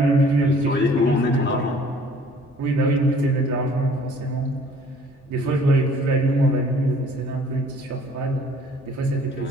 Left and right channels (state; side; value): normal; both; correlation 0.55